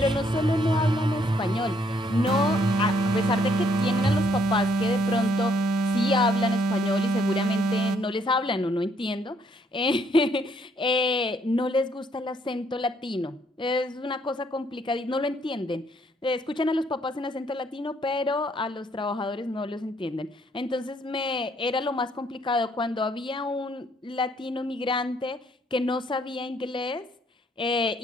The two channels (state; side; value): normal; both; correlation 0.69